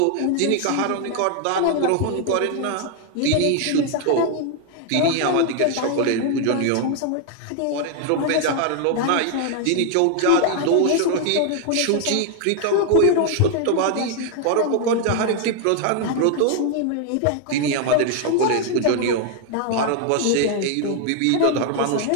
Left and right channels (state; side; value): different; both; correlation 0.00